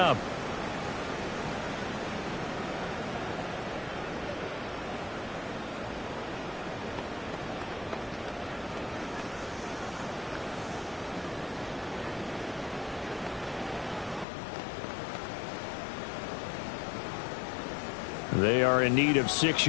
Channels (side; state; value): right; drops out; at 14.2 s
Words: They are in need of 6